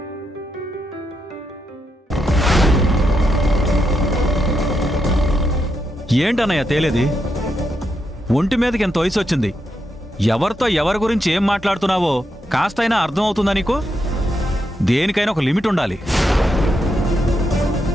ఏంటన్నయ్య తేలేది? ఒంటి మీదకి ఎంత వయసు వచ్చింది? ఎవరితో ఎవరి గురించి ఏం మాట్లాడుతున్నావో కాస్తైనా అర్థం అవుతుందా నీకు? దేనికైనా ఒక లిమిట్ ఉండాలి.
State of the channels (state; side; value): normal; both; correlation 0.82